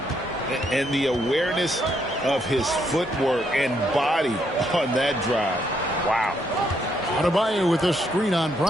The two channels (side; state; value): both; normal; correlation 0.74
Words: And the awareness of his footwork and body on that drive. Wow. Adebayo with a screen on